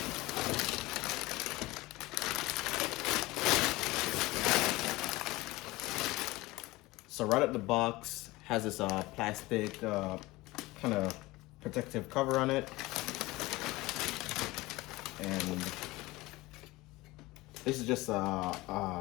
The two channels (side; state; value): right; quieter; 20.3 dB